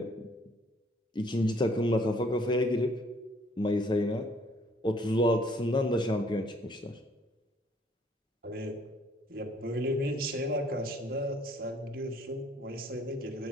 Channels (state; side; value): normal; both; correlation 0.62